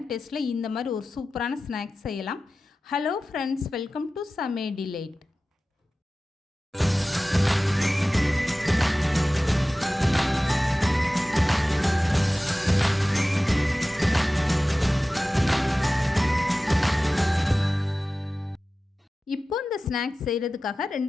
டேஸ்ட்டில் இந்த மாதிரி ஒரு சூப்பரான ஸ்நாக்ஸ் செய்யலாம். ஹலோ ஃப்ரெண்ட்ஸ், வெல்கம் டு சமே டிலைட். இப்போ இந்த ஸ்நாக்ஸ் செய்கிறதுக்காக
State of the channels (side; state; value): both; normal; correlation 0.96